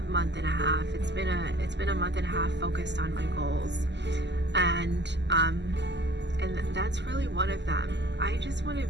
month and a half. It's been a month and a half focused on my goals, and that's really one of them. I just want to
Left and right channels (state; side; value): late; left; 0.51 ms